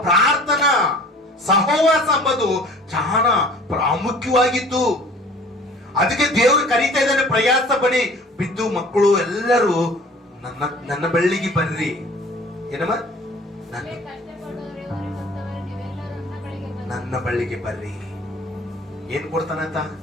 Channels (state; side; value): normal; both; correlation 0.48